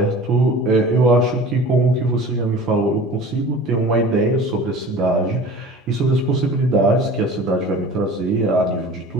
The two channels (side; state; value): both; normal; correlation 0.41